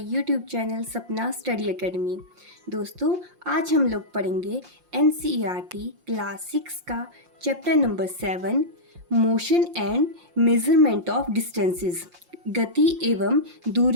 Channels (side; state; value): left; late; 5.7 ms